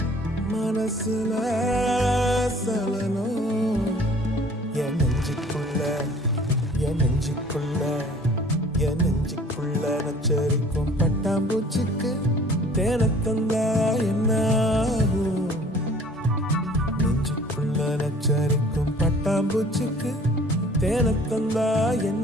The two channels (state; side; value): normal; both; correlation 0.52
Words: மனசுல சலனம் என் நெஞ்சுக்குள்ள என் நெஞ்சுக்குள்ள என் நெஞ்சுக்குள்ள நச்சரிக்கும் பட்டாம்பூச்சிக்கு தேனத்தந்தா என்ன ஆகும் நெஞ்சுக்குள்ள நச்சரிக்கும் பட்டாம்பூச்சிக்கு தேனத்தந்தா